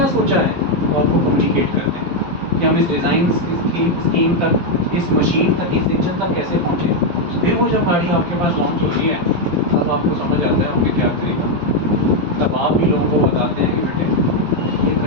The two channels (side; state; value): left; late; 11 ms